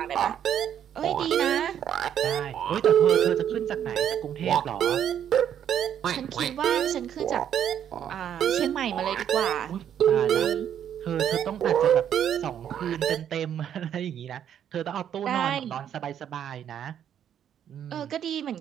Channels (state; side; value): quieter; left; 9.5 dB